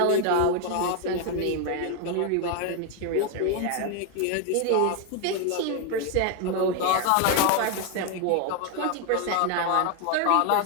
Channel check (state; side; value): different; both; correlation 0.01